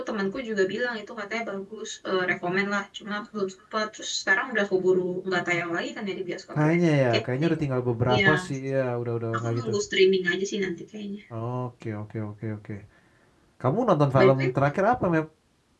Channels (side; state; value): both; identical; correlation 1.00